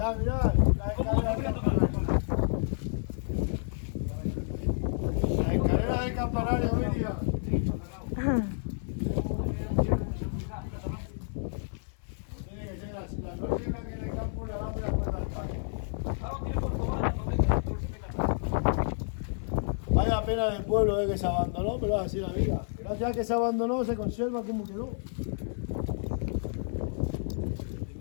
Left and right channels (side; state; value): right; silent; 58 dB below the other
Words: mirad, la escalera del campanario, Miriam. Tiene que ser así, la lógica que en el campo le damos la puerta al parque. Vaya pena del pueblo que se abandonó, pero es así la vida. Gracias a que se abandonó se conserva como quedó. En